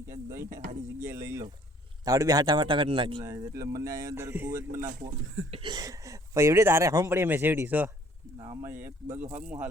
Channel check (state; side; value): normal; both; correlation 0.59